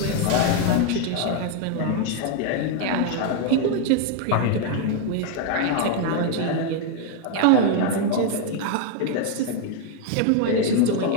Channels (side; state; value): both; different; correlation 0.00